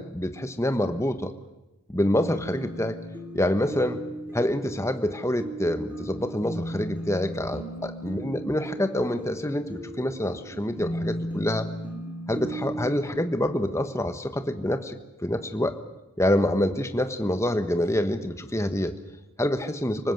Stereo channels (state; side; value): normal; both; correlation 0.82